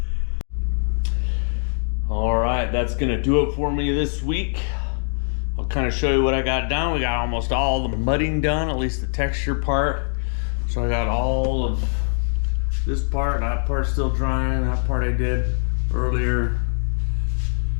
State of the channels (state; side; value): silent; right; digital silence